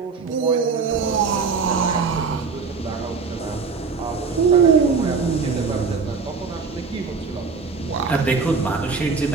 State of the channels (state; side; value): quieter; left; 5.0 dB